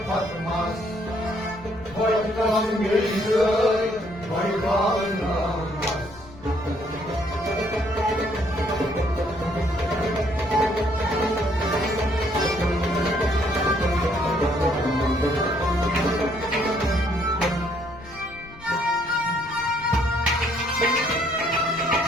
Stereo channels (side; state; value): left; noise; rumble, 20 dB below the sound